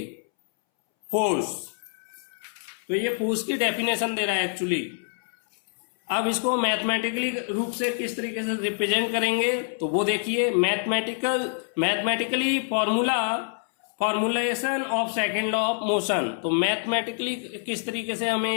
फोर्स। तो ये फोर्स की डेफिनेशन दे रहा है एक्चुअली। अब इसको मैथमेटिकली रूप से किस तरीके से रिप्रेजेंट करेंगे तो वो देखिए, mathematically formulation of second law of motion. तो मैथमेटिकली किस तरीके से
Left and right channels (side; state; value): right; silent; 61 dB below the other